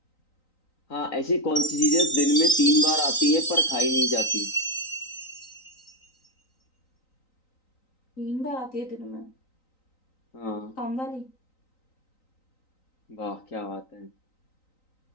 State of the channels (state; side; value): late; right; 3.9 ms